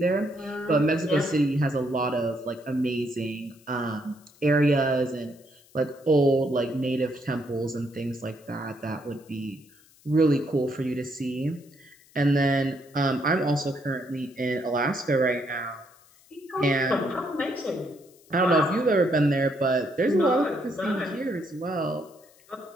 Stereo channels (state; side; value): noise; left; hiss, 28 dB below the sound